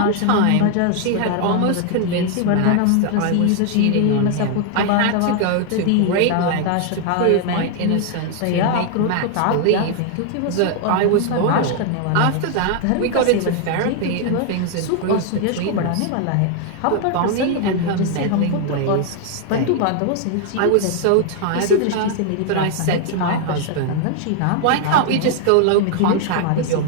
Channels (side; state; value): both; different; correlation 0.00